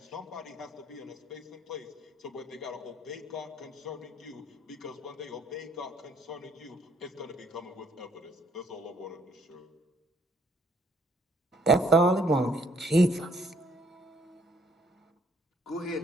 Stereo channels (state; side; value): normal; both; correlation 0.65